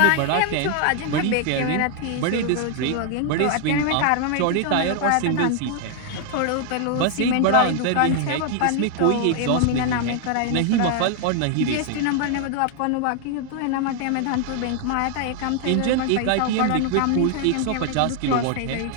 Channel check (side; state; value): both; different; correlation 0.00